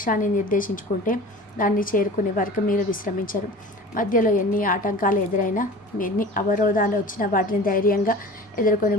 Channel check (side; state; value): both; normal; correlation 0.39